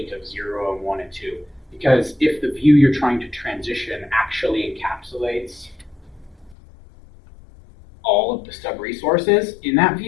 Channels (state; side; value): drops out; right; at 6.6 s